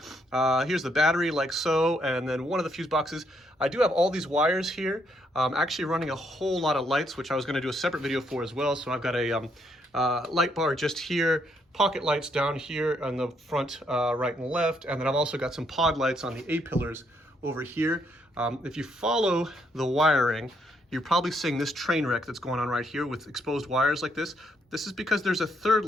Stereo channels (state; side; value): normal; both; correlation 0.73